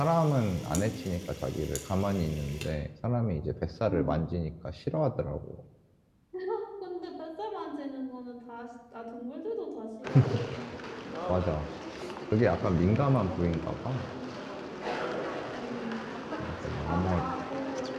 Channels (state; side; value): identical; both; correlation 1.00